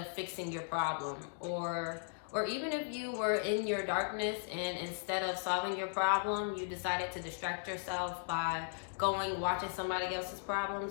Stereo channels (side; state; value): right; silent; digital silence